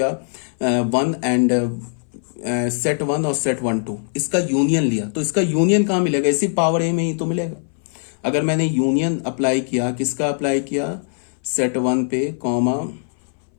1 एंड सेट 1 और सेट 1 2, इसका यूनियन लिया। तो इसका यूनियन कहां मिलेगा, इसी पावर ए में ही तो मिलेगा। अगर मैंने यूनियन अप्लाई किया, किसका अप्लाई किया, सेट 1 पे कॉमा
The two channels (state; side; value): silent; right; 61 dB below the other